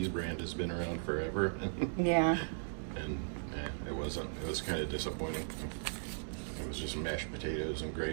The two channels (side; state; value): left; silent; digital silence